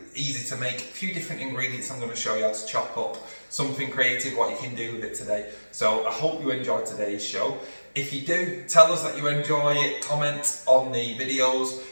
easy to make. A few different ingredients I'm going to show you how to chop up. Something creative, what you can do with it today. So I hope you enjoyed today's show. If you do, tell us that you enjoy it. Comment on the videos.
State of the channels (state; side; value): inverted; both; correlation -1.00